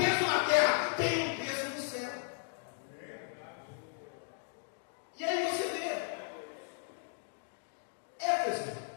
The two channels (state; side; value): silent; right; 54 dB below the other